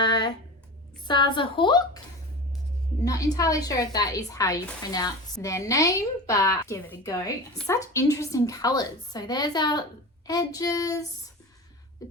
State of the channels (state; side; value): normal; both; correlation 0.30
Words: Saza Hawk. Not entirely sure if that is how you pronounce their name, but give it a go. Such interesting colours. So there's our edges. The